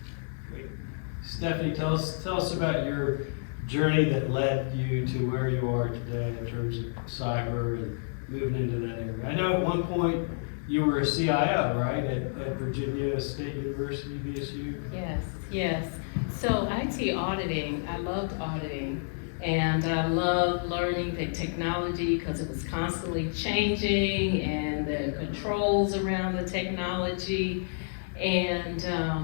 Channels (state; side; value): silent; right; 58 dB below the other